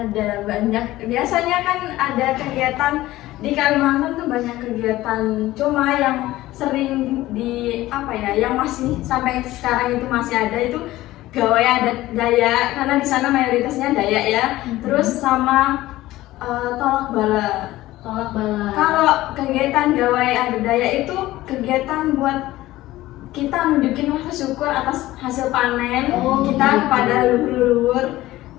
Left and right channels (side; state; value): right; quieter; 16.6 dB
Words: banyak. Biasanya kan ada kegiatan di Kalimantan tuh banyak kegiatan. Cuma yang sering di apa ya, yang masih sampai sekarang itu masih ada itu gawai adat Dayak karena di sana mayoritasnya Dayak ya. Terus sama tolak bala. Tolak bala. Kalau kegiatan gawai adat Dayak itu kegiatan buat kita nunjukin rasa syukur atas hasil panen Oh, kita gitu. kepada leluhur.